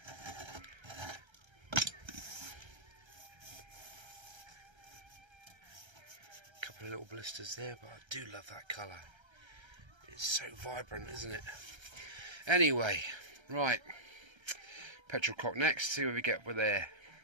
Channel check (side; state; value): left; late; 1.3 ms